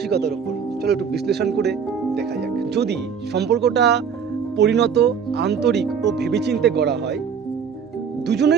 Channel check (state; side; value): quieter; left; 6.8 dB